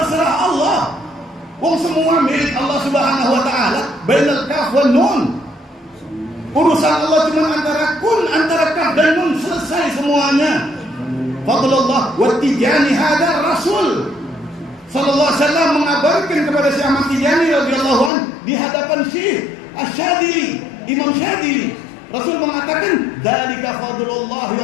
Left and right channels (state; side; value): drops out; right; at 18.1 s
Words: Allah. Wong semua milik Allah Subhanahu wa taala, bainal kaf wan nun. Urusan Allah cuma antara kaf dan nun, selesai semuanya. Fadlullah wa Tijani hadar Rasul sallallahu alaihi wasallam mengabarkan kepada Syekh Ahmad Tijani radhiyallahu anhu di hadapan Syekh Asy-Syadzili, Imam Syadzili. Rasul mengatakan, "Dzalika fadlullah